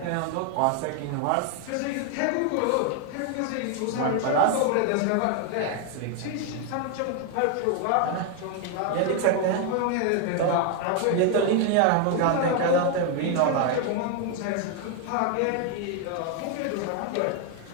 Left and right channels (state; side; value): different; both; correlation 0.01